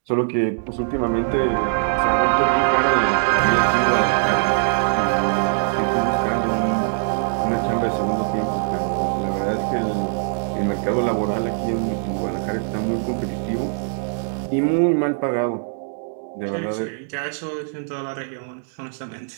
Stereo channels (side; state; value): left; silent; digital silence